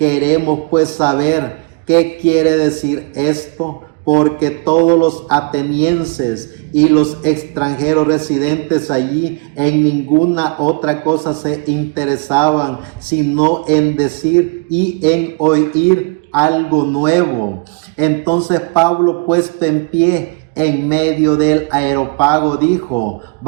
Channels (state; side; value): quieter; left; 31.4 dB